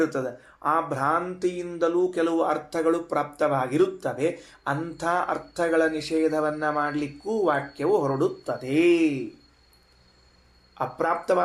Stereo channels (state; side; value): identical; both; correlation 1.00